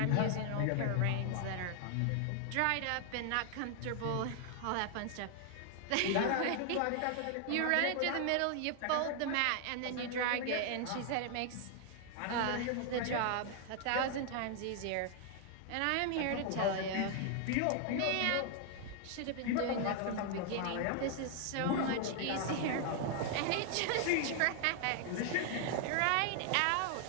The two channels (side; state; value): both; different; correlation 0.00